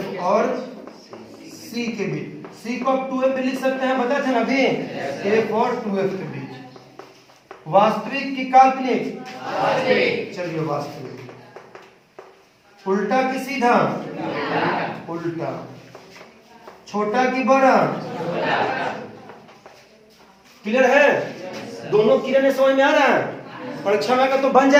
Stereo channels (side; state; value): both; identical; correlation 1.00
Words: और C के बीच। C को आप 2F भी लिख सकते हैं, बताए थे ना अभी, F और 2F के बीच। वास्तविक की काल्पनिक? चलिए वास्तविक। उल्टा की सीधा? उल्टा। छोटा की बड़ा? क्लियर है? दोनों किरण समझ में आ रहा है? परीक्षा में का तो बन